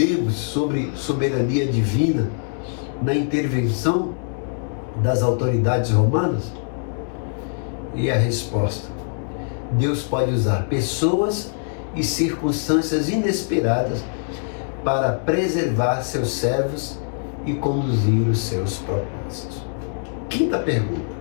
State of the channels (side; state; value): right; silent; 64 dB below the other